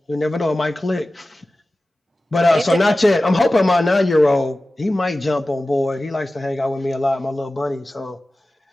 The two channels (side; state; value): both; normal; correlation 0.96